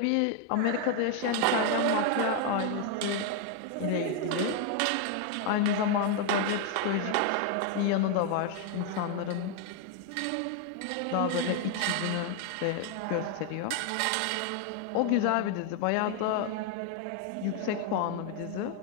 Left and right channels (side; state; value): both; different; correlation 0.00